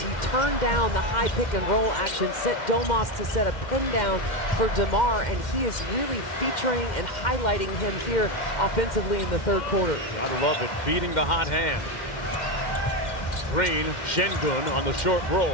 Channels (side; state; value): right; late; 2.1 ms